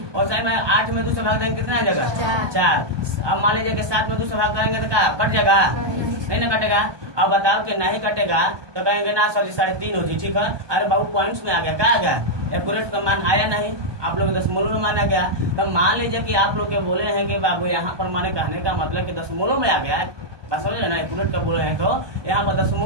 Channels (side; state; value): left; late; 1.2 ms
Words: और साइड में 8 में 2 से भाग देंगे कितना हो जाएगा, 4। अब मान लीजिए कि 7 में 2 से भाग करेंगे तो क्या कट जाएगा, नहीं ना कटेगा। अब बताओ कि नहीं कटेगा तो कहेंगे ना सर 3.5 हो जी, ठीक है। अरे बाबू पॉइंट्स में आ गया, क्या आ गया, एक्यूरेट का मान आया नहीं, आप लोग दशमलव में माना गया। तो मान लीजिए कि आप लोग के बोले हैं कि बाबू यहाँ पर माने कहने का मतलब कि दशमलव में आ गया, बस समझ ना, एक्यूरेट का बोले हैं तो यहाँ पर